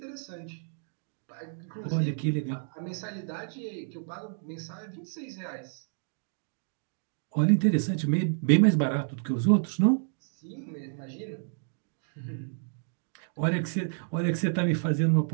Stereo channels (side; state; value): left; silent; digital silence